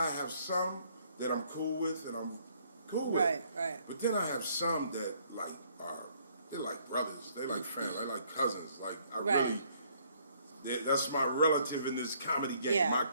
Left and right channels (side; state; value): both; inverted; correlation -0.65